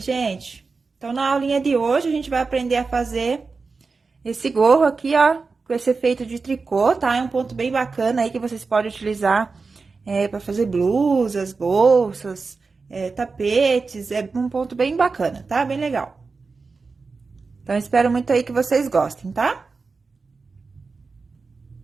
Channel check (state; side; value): quieter; left; 4.4 dB